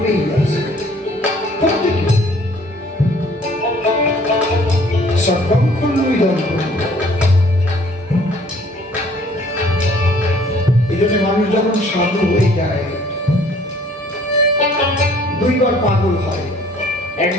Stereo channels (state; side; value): normal; both; correlation 0.57